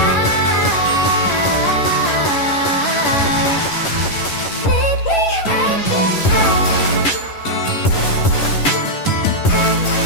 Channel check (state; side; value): late; right; 11 ms